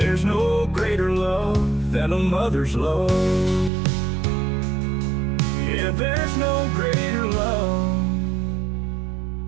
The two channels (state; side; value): drops out; left; at 3.7 s